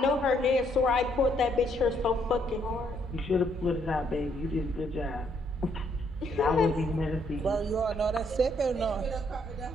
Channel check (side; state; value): both; normal; correlation 0.70